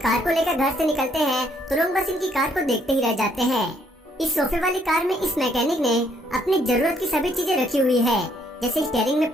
को लेकर घर से निकलते हैं तो लोग बस इनकी कार को देखते ही रह जाते हैं। इस सोफे वाली कार में इस मैकेनिक ने अपनी जरूरत की सभी चीजें रखी हुई है, जैसे स्टीयरिंग में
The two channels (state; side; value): normal; both; correlation 0.69